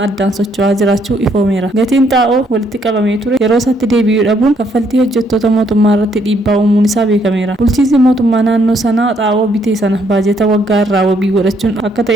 addaan socho'aa jiraachuu ifoomeera. Gatiin xaa'oo walitti qabamee ture yeroo isaatti deebi'uu dhabuun kaffaltii hojjettoota mootummaa irratti dhiibbaa uumuun isaa beekameera. Bulchiinsi mootummaa naannoo sanaa xaa'oo bitee sana baajata waggaa irraa wabii godhachuun akka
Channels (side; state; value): both; normal; correlation 0.70